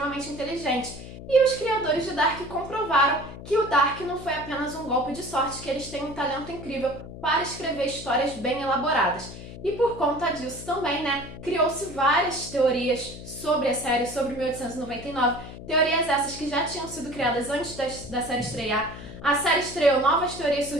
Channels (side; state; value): left; noise; hum, 13 dB below the sound